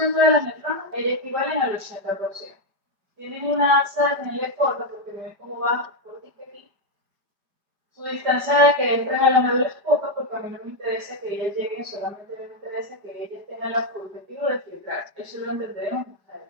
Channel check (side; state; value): left; late; 4.9 ms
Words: de las nefronas, ellas equivalen al 80%. Tienen una alza en el corta porque ven cómo va cortica aquí. Su distancia de que entren a la médula es poca porque a mí no me interesa que ellas lleguen, solamente me interesa que ellas tengan el objetivo de filtrar. Eso lo entenderemos más